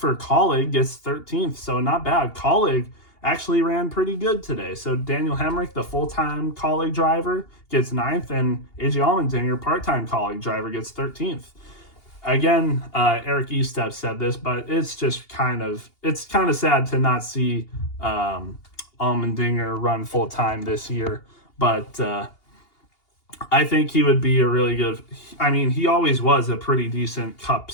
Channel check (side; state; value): right; late; 2.8 ms